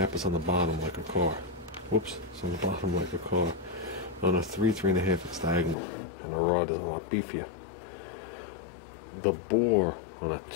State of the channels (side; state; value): right; drops out; at 5.8 s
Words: is on the bottom like a car. Whoops, it's on the bottom like a car. On a 3, 3.5, it's diagonal, and the rod is a lot beefier. The bore on a